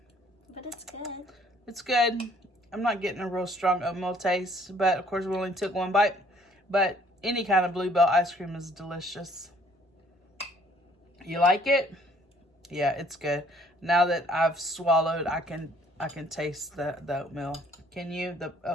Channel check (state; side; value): normal; both; correlation 0.60